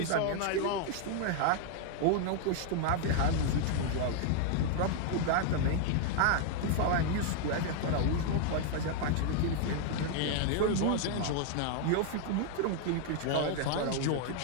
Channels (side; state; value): both; different; correlation 0.00